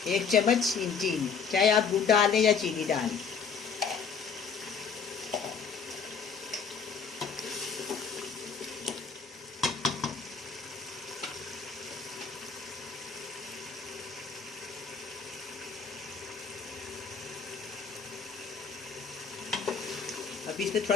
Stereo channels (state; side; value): quieter; right; 6.0 dB